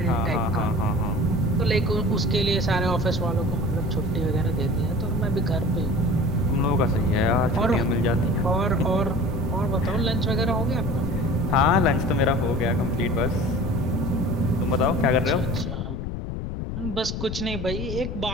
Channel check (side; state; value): left; noise; rumble, 4 dB below the sound